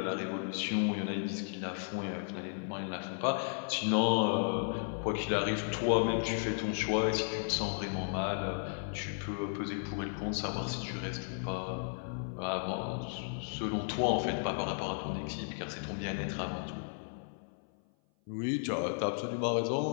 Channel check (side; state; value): right; silent; 55 dB below the other